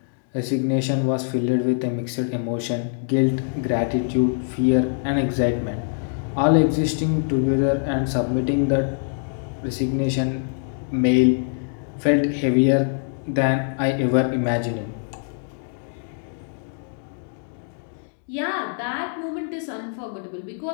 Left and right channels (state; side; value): silent; right; 63 dB below the other